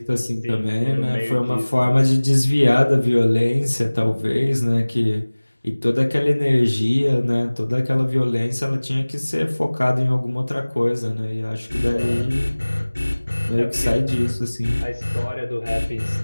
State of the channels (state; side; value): inverted; both; correlation -1.00